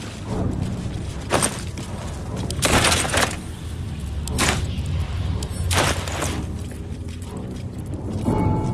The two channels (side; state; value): both; identical; correlation 1.00